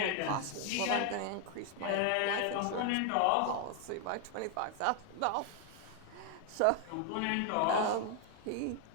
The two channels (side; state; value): both; different; correlation 0.00